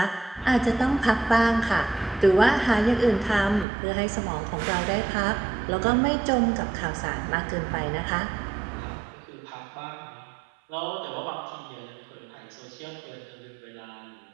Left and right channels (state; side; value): drops out; left; at 3.7 s